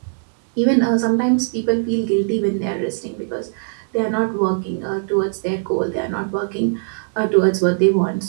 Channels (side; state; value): left; silent; digital silence